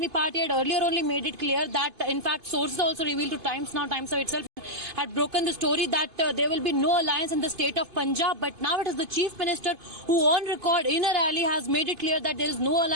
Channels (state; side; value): late; left; 2.5 ms